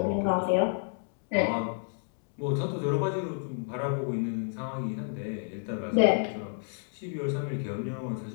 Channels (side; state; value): right; silent; 58 dB below the other